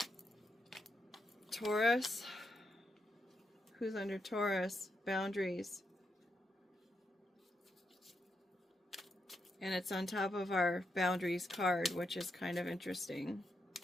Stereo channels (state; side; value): normal; both; correlation 0.83